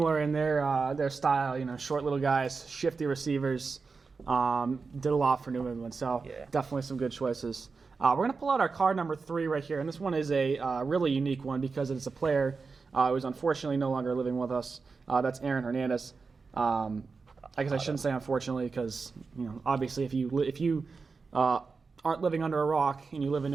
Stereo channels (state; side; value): quieter; left; 4.6 dB